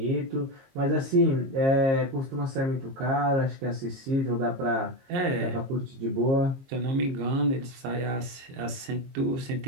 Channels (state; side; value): late; left; 22 ms